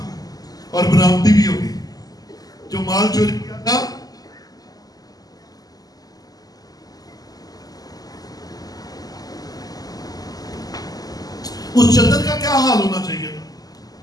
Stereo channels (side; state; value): right; late; 0.18 ms